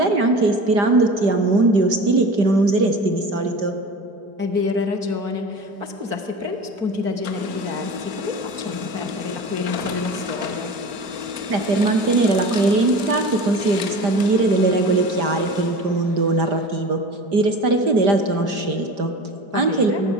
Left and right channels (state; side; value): late; left; 5.0 ms